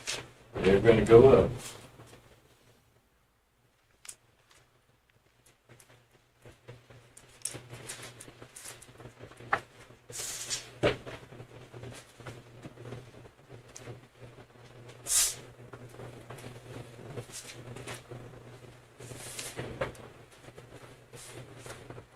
They're gonna go up.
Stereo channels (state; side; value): identical; both; correlation 1.00